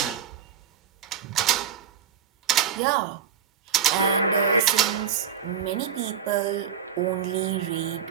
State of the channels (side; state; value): left; quieter; 7.7 dB